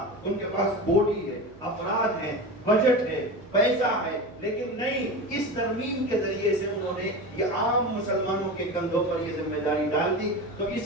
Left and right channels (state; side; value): noise; right; hum, 22 dB below the sound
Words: ان کے پاس باڈی ہے، افراد ہیں، بجٹ ہے، پیسہ ہے، لیکن نہیں، اس ترمیم کے ذریعے سے انہوں نے یہ عام مسلمانوں کے کندھوں پر یہ ذمہ داری ڈال دی۔ تو